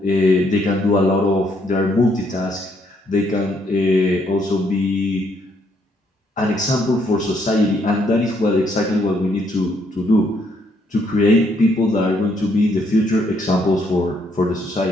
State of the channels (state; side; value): normal; both; correlation 0.71